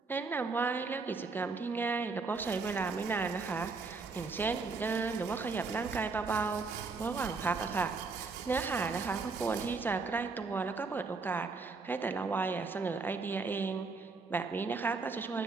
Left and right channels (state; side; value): quieter; left; 4.3 dB